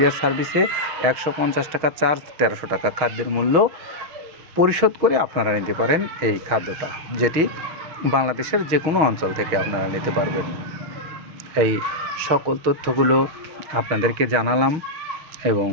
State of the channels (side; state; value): left; late; 6.4 ms